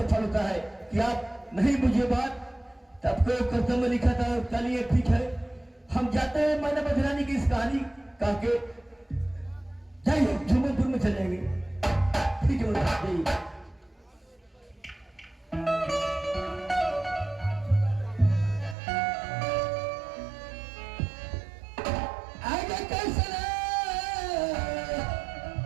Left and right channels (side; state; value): left; drops out; at 18.8 s